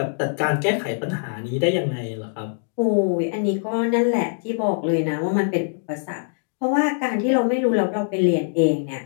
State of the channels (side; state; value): right; silent; digital silence